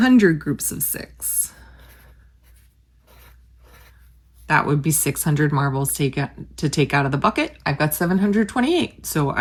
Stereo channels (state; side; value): identical; both; correlation 1.00